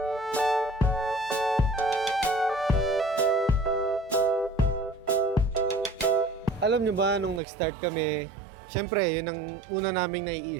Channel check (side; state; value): left; drops out; at 7.4 s